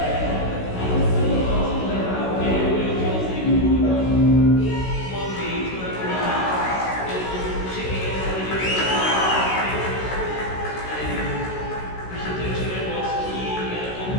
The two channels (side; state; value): right; late; 16 ms